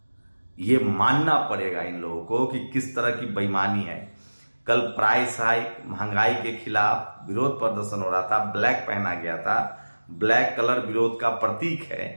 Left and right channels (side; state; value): both; inverted; correlation -1.00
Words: ये मानना पड़ेगा इन लोगों को कि किस तरह की बेईमानी है। कल प्राइस हाइक, महंगाई के खिलाफ विरोध प्रदर्शन हो रहा था, ब्लैक पहना गया था, ब्लैक कलर विरोध का प्रतीक